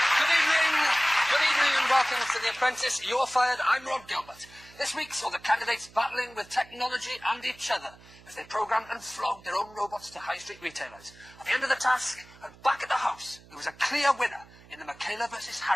Good evening and welcome to The Apprentice. You're fired. I'm Rob Gilbert. This week saw the candidates battling with technology and each other as they programmed and flogged their own robots to high street retailers. At the end of the task, and back at the house, there was a clear winner in the Michaela versus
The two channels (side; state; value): right; noise; hum, 23 dB below the sound